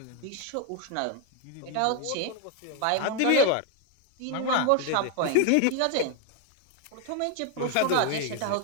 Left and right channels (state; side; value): different; both; correlation 0.01